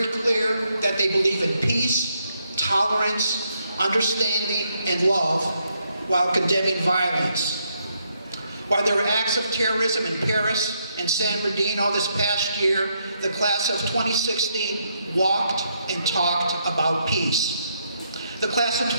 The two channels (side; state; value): both; inverted; correlation -0.76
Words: clear that they believe in peace, tolerance, understanding, and love while condemning violence. While there were acts of terrorism in Paris and San Bernardino this past year, the class of 2016 walked and talked about peace. The class of